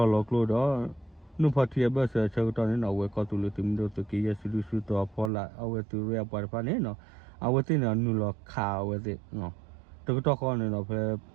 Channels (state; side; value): drops out; left; at 5.3 s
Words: đó nó phát hiện bây giờ chơi đó này nó với có tụi mình đó tụi kia xử đó phải là ở tụi rồi bảo phải này nó ở tụi nó nuôi là khao với nó tụi đó con này nó phải